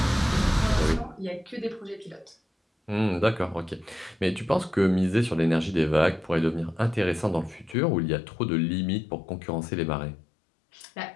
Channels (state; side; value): drops out; right; at 7.8 s